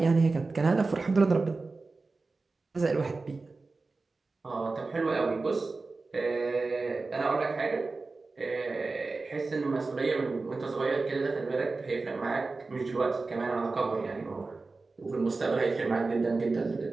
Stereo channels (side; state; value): left; quieter; 3.7 dB